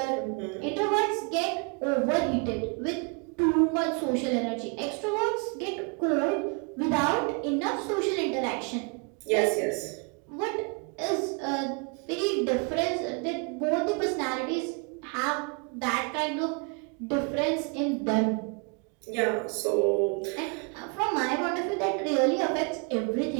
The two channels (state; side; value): quieter; left; 34.1 dB